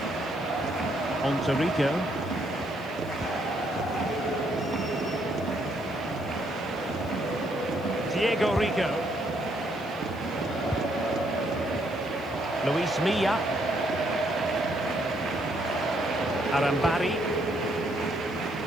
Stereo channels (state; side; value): noise; right; hiss, 26 dB below the sound